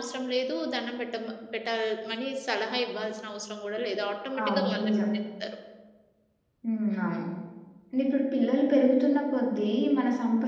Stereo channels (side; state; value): both; identical; correlation 1.00